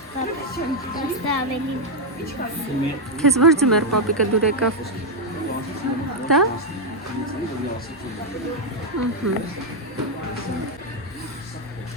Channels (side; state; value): both; normal; correlation 0.01